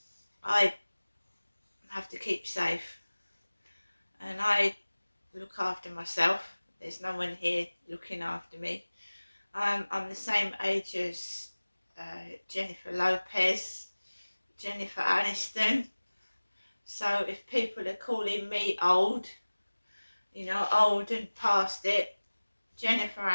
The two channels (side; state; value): both; inverted; correlation -1.00